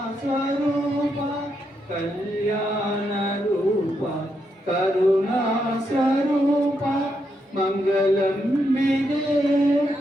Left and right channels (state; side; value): normal; both; correlation 0.81